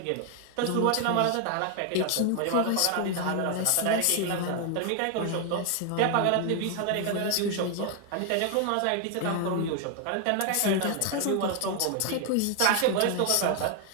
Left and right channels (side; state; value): both; different; correlation 0.00